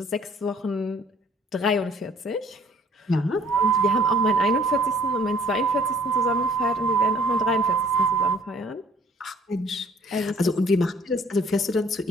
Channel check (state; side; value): normal; both; correlation 0.57